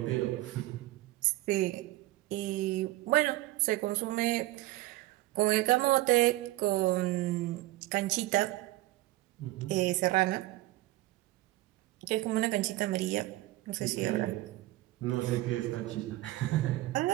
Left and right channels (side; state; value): left; quieter; 17.6 dB